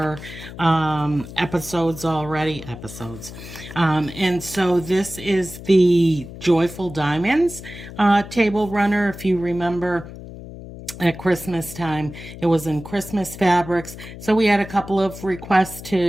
episodes already. And so this is the Joyful Diamonds table runner. If you remember, at Christmas time, it was in Christmas fabrics. So we had a couple of requests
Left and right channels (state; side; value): noise; left; hum, 13 dB below the sound